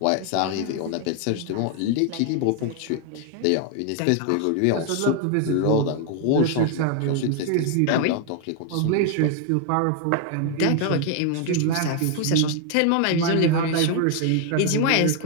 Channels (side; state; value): both; different; correlation 0.00